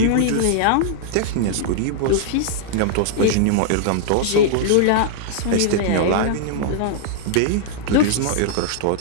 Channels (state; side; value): different; both; correlation -0.01